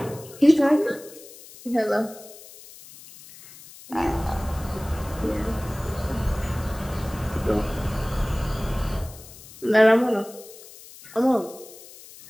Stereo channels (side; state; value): left; noise; hiss, 19 dB below the sound